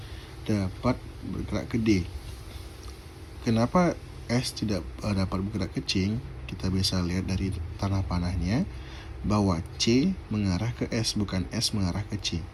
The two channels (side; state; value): both; identical; correlation 1.00